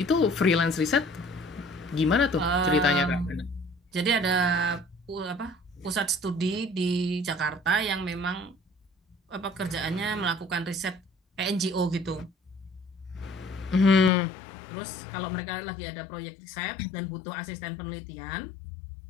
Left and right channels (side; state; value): right; drops out; at 14.1 s